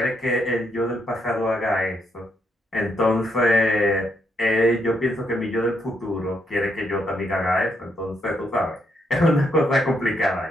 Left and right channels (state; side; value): normal; both; correlation 0.77